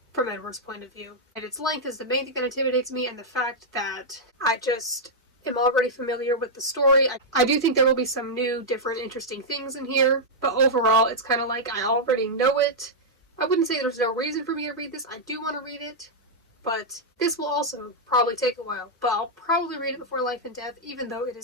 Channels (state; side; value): normal; both; correlation -0.05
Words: from Edward's point of view. And its length is the main thing that intimidates me, and the fact that I just am already familiar with the story. I do think there will be some new, different, interesting things in here, but overall it's kind of like I already know it. I wouldn't say there's no reason for me to read this. I do want to read it, but this will also probably take a while. But I'll probably read it before Life and Death, even though it